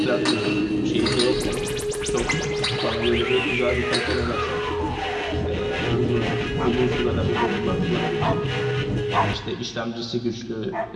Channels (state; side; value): identical; both; correlation 1.00